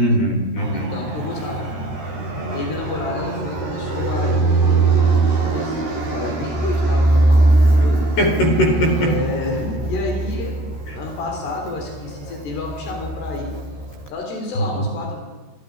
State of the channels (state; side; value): late; right; 13 ms